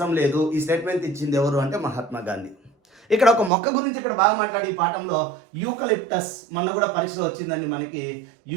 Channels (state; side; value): drops out; left; at 3.5 s